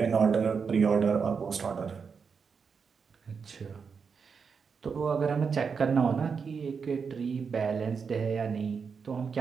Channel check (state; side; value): quieter; left; 5.8 dB